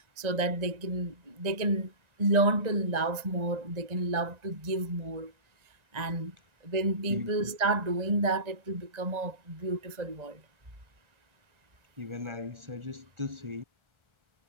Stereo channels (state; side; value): late; left; 1.3 ms